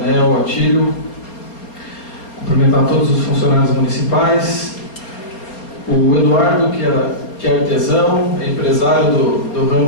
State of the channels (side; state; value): right; late; 4.3 ms